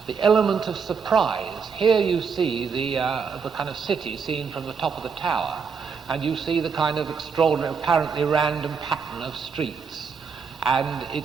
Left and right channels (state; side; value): quieter; left; 5.9 dB